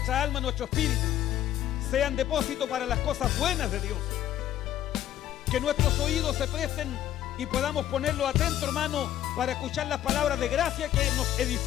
alma, nuestro espíritu sean depósito para las cosas buenas de Dios. Que nuestros oídos se presten y podamos ponerlos atentos, hermano, para escuchar las palabras de gracia que nos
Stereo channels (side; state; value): right; quieter; 12.0 dB